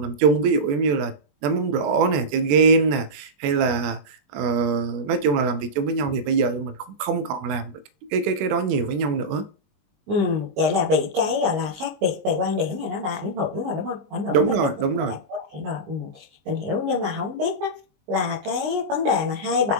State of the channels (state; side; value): late; left; 21 ms